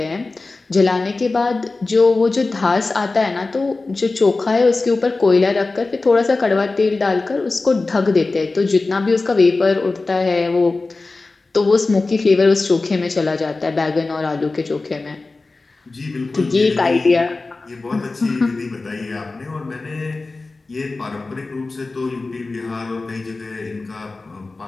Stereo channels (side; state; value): right; quieter; 3.5 dB